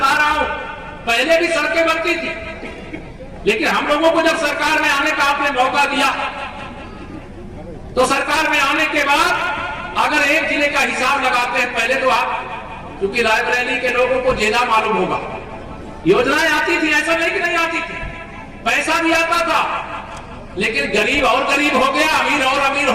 रहा हूं। पहले भी सड़कें बनती थी, लेकिन हम लोगों को जब सरकार में आने का आपने मौका दिया, तो सरकार में आने के बाद अगर एक जिले का हिसाब लगाते हैं, पहले तो आप क्योंकि रायबरेली के लोगों को ज्यादा मालूम होगा, योजनाएं आती थी, ऐसा नहीं कि नहीं आती थी, पैसा भी आता था, लेकिन गरीब और गरीब हो गया, अमीर और अमीर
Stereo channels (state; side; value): identical; both; correlation 1.00